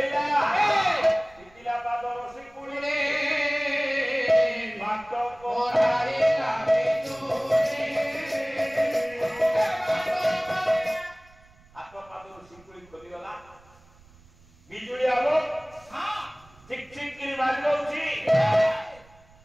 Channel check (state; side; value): noise; right; rumble, 27 dB below the sound